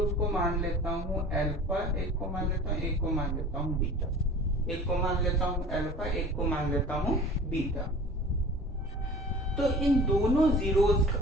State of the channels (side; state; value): both; normal; correlation 0.42